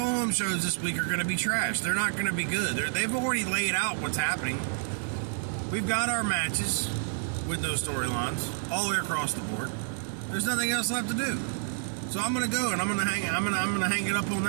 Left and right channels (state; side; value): silent; left; 58 dB below the other